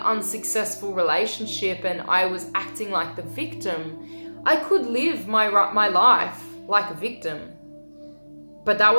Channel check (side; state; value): both; inverted; correlation -1.00